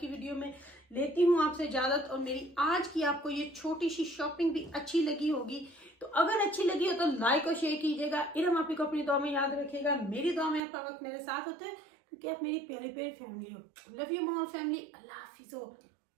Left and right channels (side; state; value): left; drops out; at 10.6 s